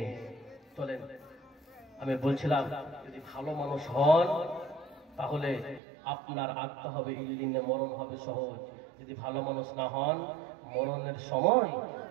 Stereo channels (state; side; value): drops out; left; at 5.8 s